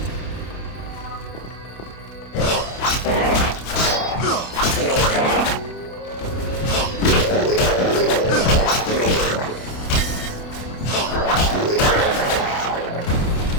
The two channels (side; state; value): right; late; 28 ms